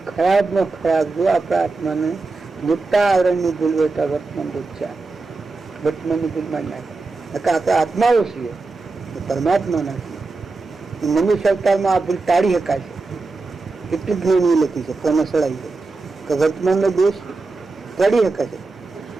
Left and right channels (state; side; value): quieter; left; 3.7 dB